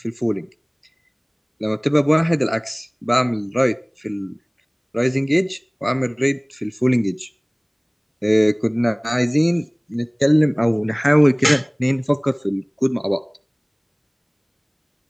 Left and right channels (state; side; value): identical; both; correlation 1.00